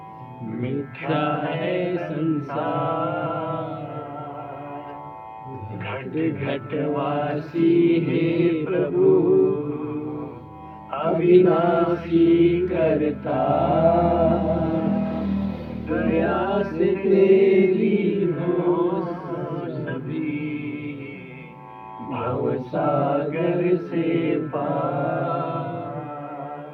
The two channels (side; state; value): both; identical; correlation 1.00